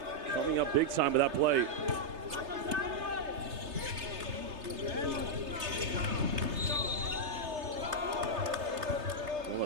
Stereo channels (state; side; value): late; left; 3.3 ms